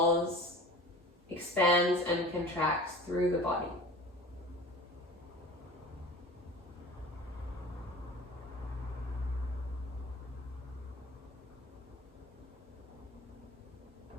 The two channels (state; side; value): normal; both; correlation 0.39